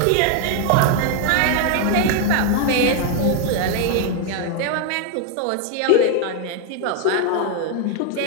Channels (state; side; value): different; both; correlation 0.00